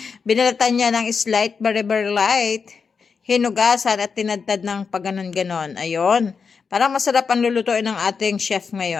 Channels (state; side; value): quieter; right; 5.5 dB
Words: Binalatan niya ng slight, very light. Hinugasan at tinadtad ng paganon-ganon. Ayun. Parang masarap ang lulutuin ng ating chef